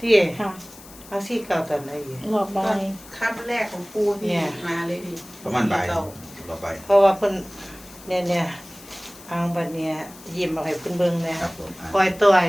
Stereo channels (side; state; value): left; noise; hiss, 19 dB below the sound